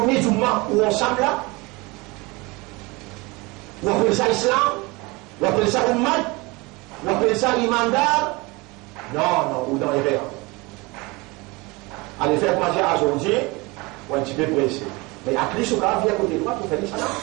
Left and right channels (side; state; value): left; quieter; 24.7 dB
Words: de mois où ensemble là? Ou on appelle ça islam? Ou on appelle ça ummat? Ou on appelle ça imandar? Non, ou dans les verres. Allez faire manger à aujourd'hui, ou un petit peu pressé. Mais à plus, au cas, viens à côté de moi pour faire ça.